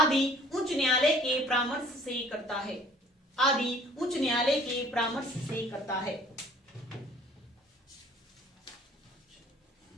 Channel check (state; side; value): normal; both; correlation 0.53